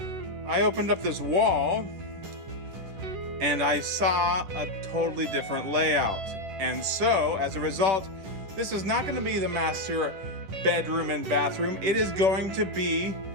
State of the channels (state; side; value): late; left; 11 ms